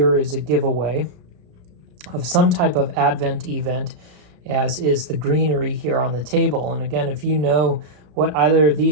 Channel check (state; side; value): late; left; 34 ms